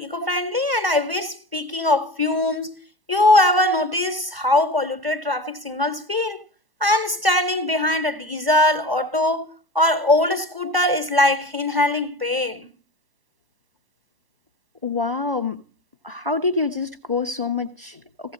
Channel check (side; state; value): left; late; 1.1 ms